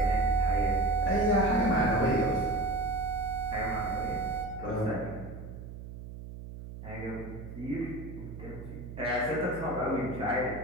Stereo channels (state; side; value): noise; right; hum, 12 dB below the sound